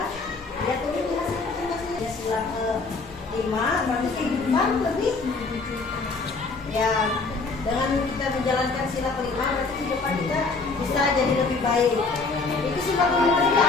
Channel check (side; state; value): right; quieter; 4.0 dB